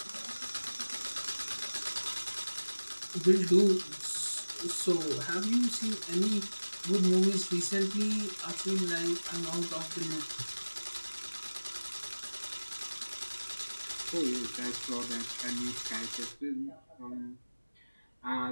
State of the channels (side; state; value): both; inverted; correlation -1.00